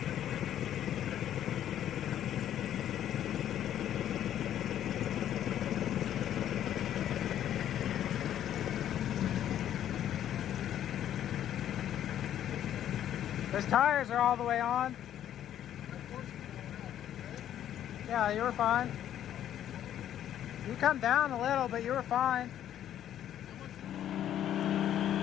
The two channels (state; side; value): quieter; right; 10.9 dB